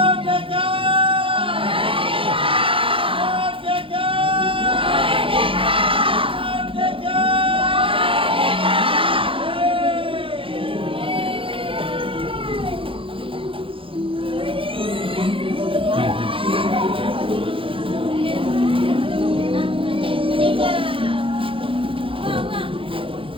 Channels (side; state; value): left; late; 0.26 ms